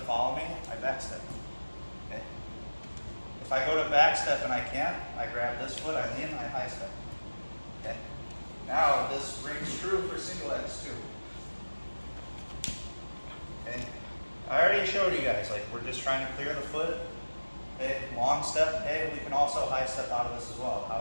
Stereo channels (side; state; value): both; inverted; correlation -1.00